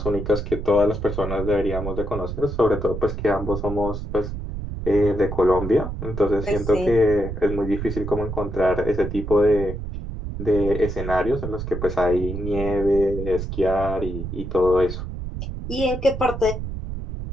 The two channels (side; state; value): right; noise; rumble, 6 dB below the sound